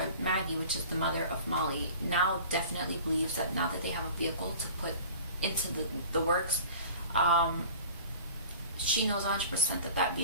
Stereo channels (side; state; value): both; inverted; correlation -0.42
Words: Maggie, which is the mother of Molly, now definitely believes that now that they have a vehicle to put into the works, she knows 100% that that